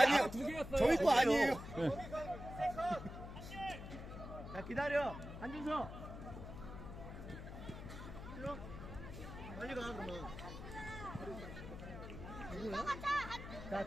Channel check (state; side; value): noise; left; hum, 10 dB below the sound